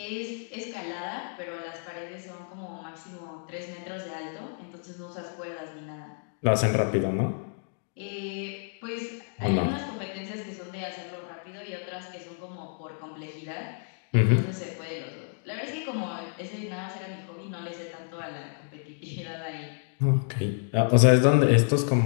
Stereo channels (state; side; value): silent; right; 58 dB below the other